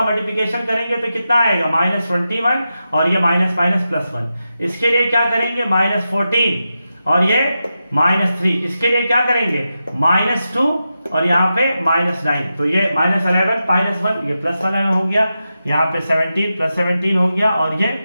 मल्टीप्लिकेशन करेंगे तो कितना आएगा? -21 और ये माइनस +1। इसके लिए क्या करेंगे? -14 और ये -3। इसके लिए क्या करेंगे? -2 और यहाँ पे -9। तो ये -11 -1 ये +11 हो गया। यहाँ पे 17 + 17 हो गया और ये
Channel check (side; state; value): both; inverted; correlation -0.90